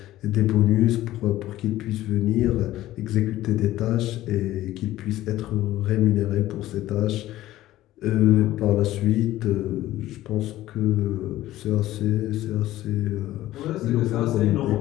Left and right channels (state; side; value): quieter; right; 15.1 dB